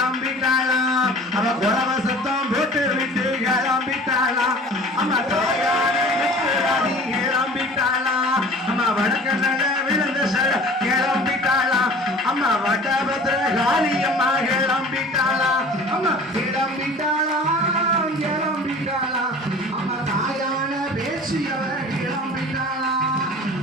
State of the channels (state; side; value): normal; both; correlation 0.44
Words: அவ குலவ சத்தம் போட்டு விட்டு கிளம்பிட்டாளா அம்மா தாயான கிளம்பிட்டாளா அம்மா வடக்க நட விழுந்த கிளம்பிட்டாளா அம்மா வடபத்திர காளி அம்மா கிளம்பிட்டாளா அம்மா கிளம்பிட்டாளா கிளம்பிட்டாளா அம்மா தாயான பேசி அவ கிளம்பிட்டாளா